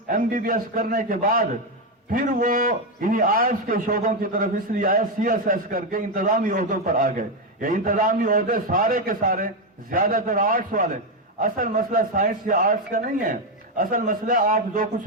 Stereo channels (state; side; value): normal; both; correlation 0.07